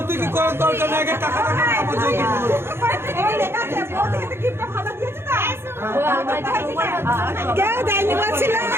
করার দরকার নেই, আগে টাকা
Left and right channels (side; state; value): left; late; 0.12 ms